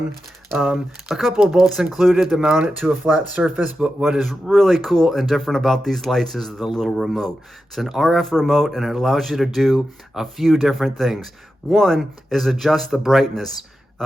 A couple of bolts included to mount it to a flat surface, but what is really cool and different about these lights is the little remote. It's an RF remote and it allows you to do a few different things. One is adjust the brightness.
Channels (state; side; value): normal; both; correlation 0.90